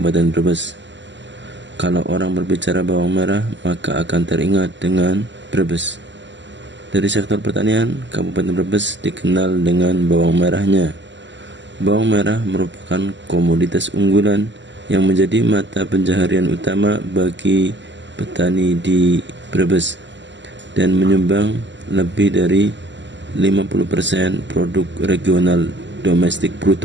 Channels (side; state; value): left; late; 0.53 ms